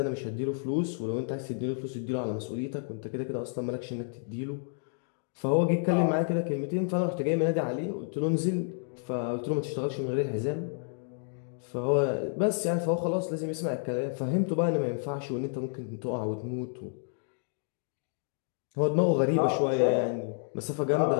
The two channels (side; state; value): right; silent; digital silence